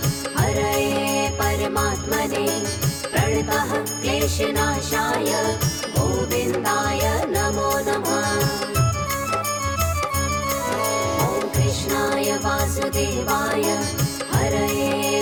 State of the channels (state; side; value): identical; both; correlation 1.00